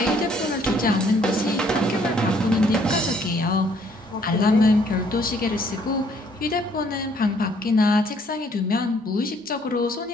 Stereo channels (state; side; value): normal; both; correlation 0.64